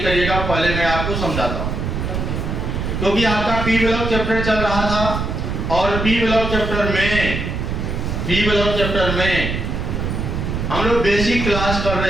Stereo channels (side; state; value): right; noise; rumble, 2 dB below the sound